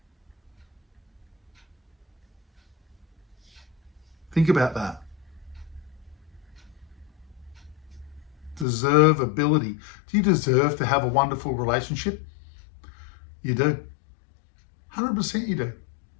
Think about that. Deservability. Do you deserve to have a wonderful relationship? You do. 100% you do.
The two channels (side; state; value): right; drops out; at 8.7 s